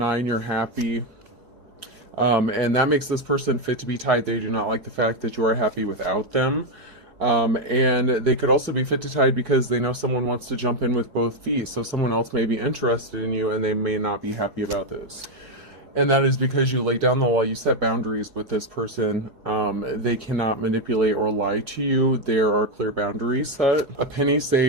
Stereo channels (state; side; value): late; left; 4.7 ms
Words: You're happy. And that makes this person fit to be tied. They do not like the fact that you are happy without them. And they could also be fit to tied because they know someone wants to jump in with both feet. So someone else may be interested in you and they may not be happy about this. And that is because you lay down the law, you set boundaries with this person. They cannot manipulate or lie to you. There are clear boundaries set. A penny